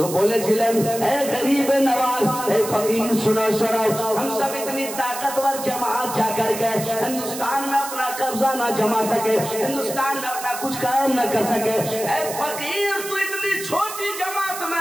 बोलेছিলেন, ए गरीब नवाज, ए फकीर सुनो सुनो, हम सब इतनी ताकतवर जमात जाकर के हिंदुस्तान में अपना कब्जा ना जमा सके, हिंदुस्तान में अपना कुछ काम न कर सके, ए फकीर तू इतनी छोटी जमात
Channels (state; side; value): noise; right; hiss, 9 dB below the sound